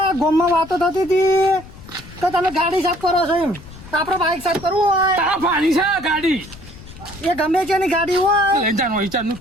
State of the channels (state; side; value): noise; left; rumble, 18 dB below the sound